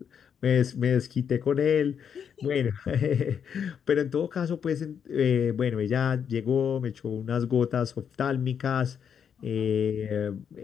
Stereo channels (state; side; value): quieter; right; 7.7 dB